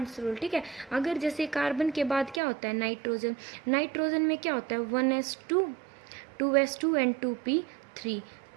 रूल, ठीक है। अगर जैसे कार्बन के बाद क्या होता है, नाइट्रोजन, नाइट्रोजन में क्या होता है 1s2 2s2 एंड 2p3,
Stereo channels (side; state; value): left; drops out; at 2.4 s